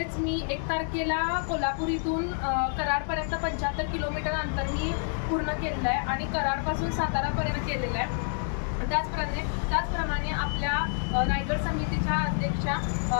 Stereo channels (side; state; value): right; silent; 59 dB below the other